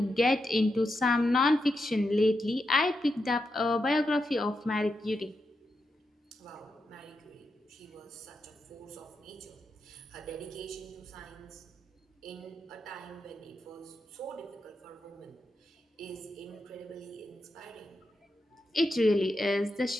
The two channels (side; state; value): both; normal; correlation 0.86